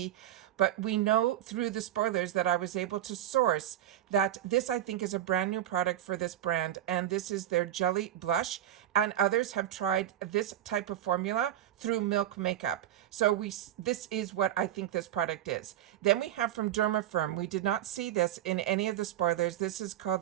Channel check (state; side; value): quieter; left; 11.9 dB